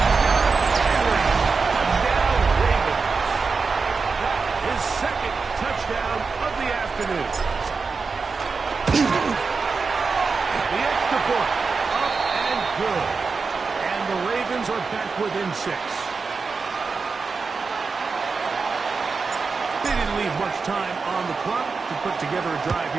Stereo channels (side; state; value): left; quieter; 4.7 dB